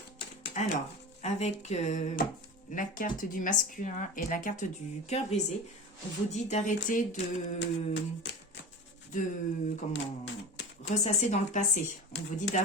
Alors, avec la carte du masculin et la carte du cœur brisé, on vous dit d'arrêter de ressasser dans le passé. On vous dit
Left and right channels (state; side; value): normal; both; correlation 0.30